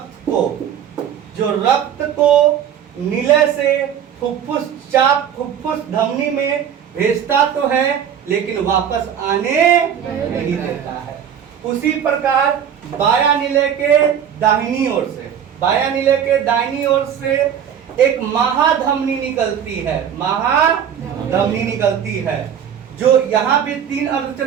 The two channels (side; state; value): left; quieter; 8.8 dB